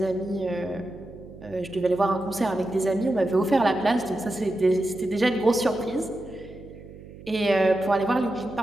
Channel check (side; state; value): right; noise; hum, 17 dB below the sound